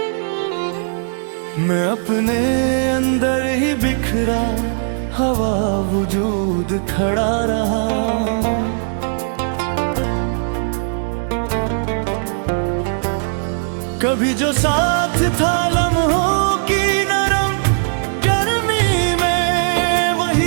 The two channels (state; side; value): silent; left; 66 dB below the other